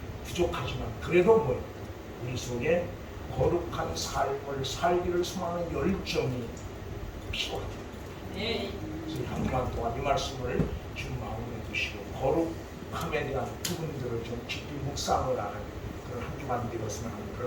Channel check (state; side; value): identical; both; correlation 1.00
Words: 부족하지만 그래도 뭐 우리 속에 거룩한 삶을 살기를 소망하는 열정이 필요하다. 그래서 한 주간 동안 이 말씀을 좀 마음에 두시고 거룩함에 대한 부분들을 좀 깊이 묵상을 하는 그런 한 주간 되었으면 하는